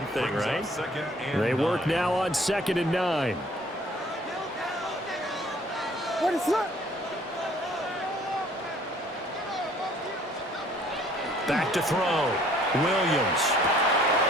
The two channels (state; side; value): normal; both; correlation 0.57